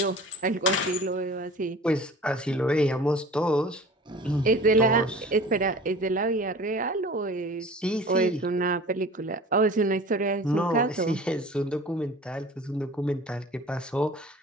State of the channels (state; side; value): normal; both; correlation 0.42